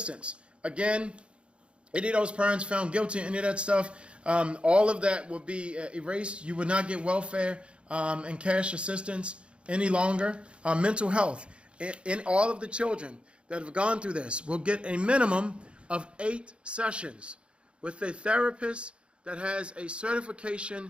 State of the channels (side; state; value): left; late; 0.058 ms